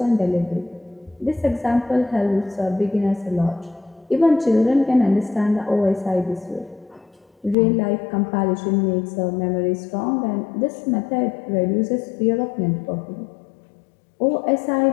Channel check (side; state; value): right; drops out; at 7.6 s